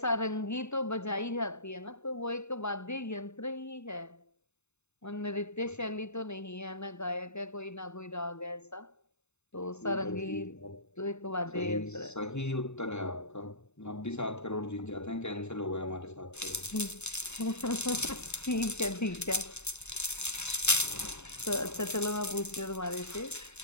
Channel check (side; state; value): right; late; 0.82 ms